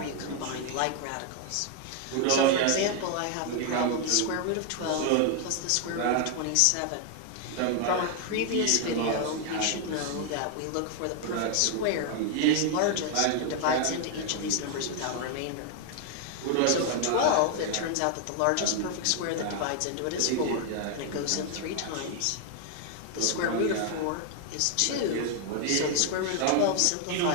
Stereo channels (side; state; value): both; different; correlation 0.00